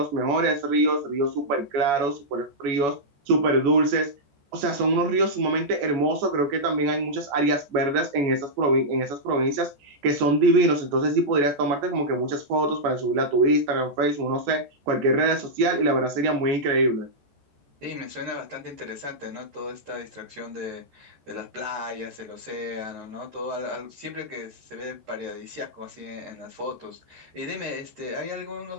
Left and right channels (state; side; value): late; left; 14 ms